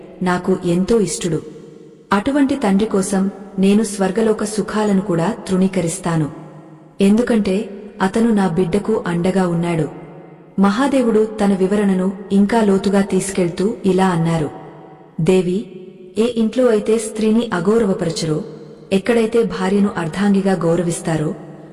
నాకు ఎంతో ఇష్టుడు. అటువంటి తండ్రి కోసం నేను స్వర్గలోక సుఖాలను కూడా తృణీకరిస్తాను. ఎందుకంటే అతను నా బిడ్డకు అండగా ఉన్నాడు. మహాదేవుడు తన వివరణను ఇంకా లోతుగా తీసుకెళ్తూ ఇలా అన్నారు. దేవి, ఏ ఇంట్లో అయితే స్త్రీని అగౌరవపరచరో, ఎక్కడైతే భార్యను అర్ధాంగిగా గౌరవిస్తారో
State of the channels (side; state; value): both; identical; correlation 1.00